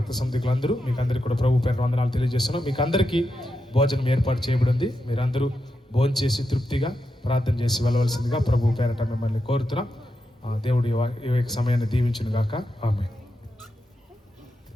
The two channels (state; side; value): normal; both; correlation 0.86